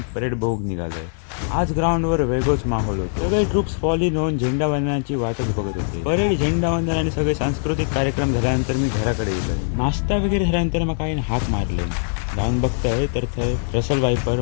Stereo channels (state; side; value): silent; right; digital silence